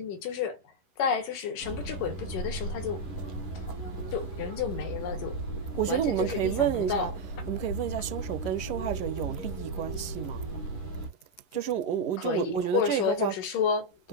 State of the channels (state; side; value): late; right; 11 ms